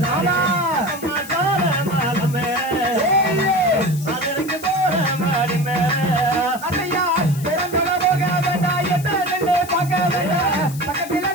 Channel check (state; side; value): noise; left; hiss, 15 dB below the sound